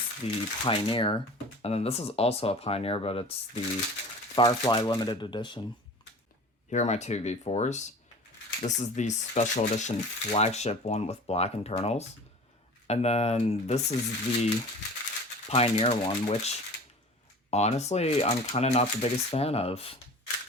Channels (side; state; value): both; normal; correlation 0.40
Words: the Pioneer, and then this is also a Pioneer, but it's the Firefly Limited Edition. Here are my two V4s. This is the Special Edition flagship one with black internals. And then this is the Pioneer one, which honestly, I'm kind of not the biggest fan of.